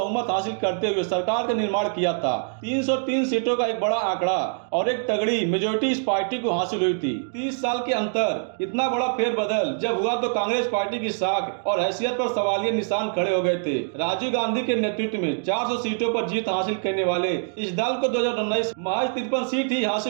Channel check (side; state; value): left; silent; digital silence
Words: हासिल करते हुए सरकार का निर्माण किया था। 303 सीटों का एक बड़ा आंकड़ा और एक तगड़ी मेजोरिटी इस पार्टी को हासिल हुई थी। 30 साल के अंतर, इतना बड़ा फेरबदल जब हुआ तो कांग्रेस पार्टी की साख और हैसियत पर सवालिया निशान खड़े हो गए थे। राजीव गांधी के नेतृत्व में 400 सीटों पर जीत हासिल करने वाले इस दल को 2019 महज 53 सीट ही